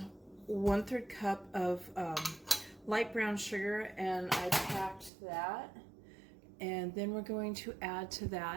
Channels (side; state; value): left; drops out; at 5.1 s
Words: 1/3 cup of light brown sugar, and I packed that. And then we're going to add to